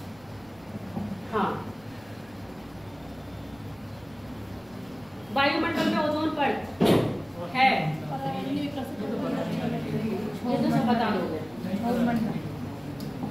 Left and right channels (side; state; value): right; noise; rumble, 25 dB below the sound